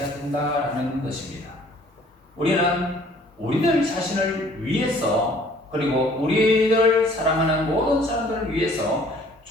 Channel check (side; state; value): both; normal; correlation 0.56